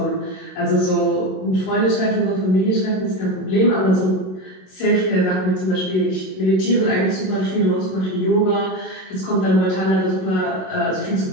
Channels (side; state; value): right; late; 27 ms